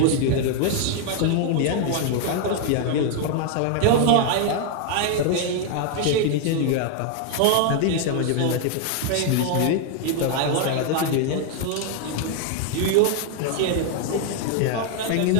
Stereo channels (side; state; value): both; different; correlation 0.00